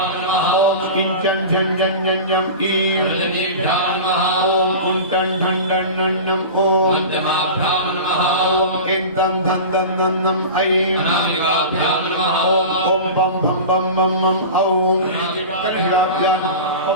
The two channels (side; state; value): both; inverted; correlation -0.31